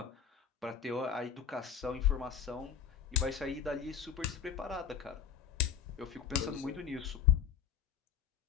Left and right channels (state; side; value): quieter; right; 7.9 dB